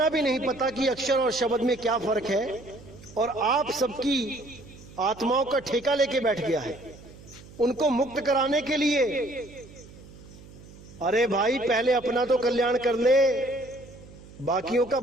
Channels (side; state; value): right; noise; hum, 20 dB below the sound